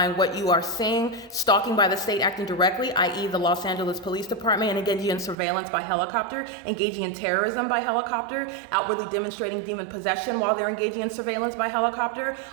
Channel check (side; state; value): left; drops out; at 5.4 s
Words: what you are seeing: stalking by the state acting directly, i.e. the Los Angeles Police Department, and engaging in surveillance by helicopter, engaging in terrorism by helicopter, outwardly demonstrating demon possession while they're engaging in surveillance by helicopter,